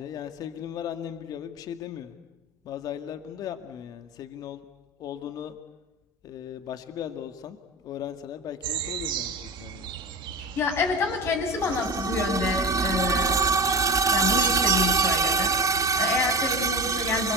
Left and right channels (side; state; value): both; normal; correlation 0.26